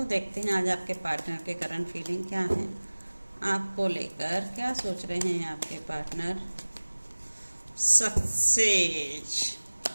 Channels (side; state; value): both; inverted; correlation -1.00